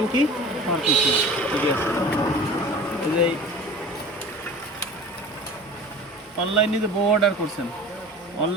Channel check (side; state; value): both; normal; correlation 0.40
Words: কি? ঠিক আছে। এই যে অনলাইনে যে বউ অর্ডার করছেন,